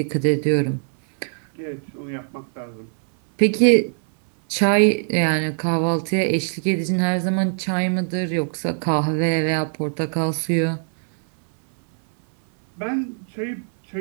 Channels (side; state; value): left; silent; 62 dB below the other